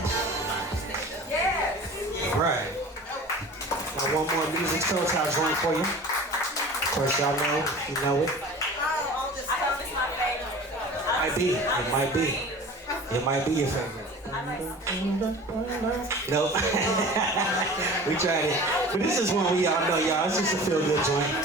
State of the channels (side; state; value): both; normal; correlation 0.40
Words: Yes. Right. One more music soul child joint for you. Of course, y'all know, you know it. It might be your favorite. Nope. We tried it. But this is one we all know, y'all. It's just a feel-good joint.